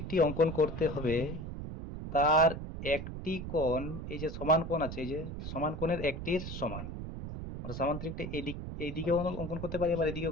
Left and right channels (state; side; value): noise; right; rumble, 7 dB below the sound